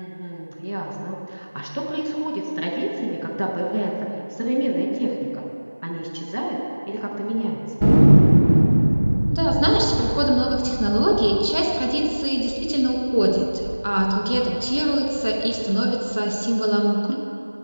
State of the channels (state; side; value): inverted; both; correlation -1.00